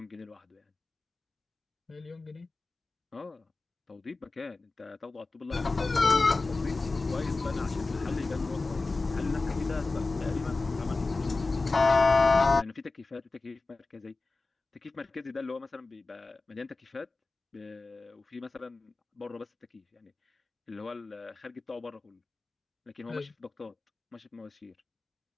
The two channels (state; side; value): quieter; right; 3.6 dB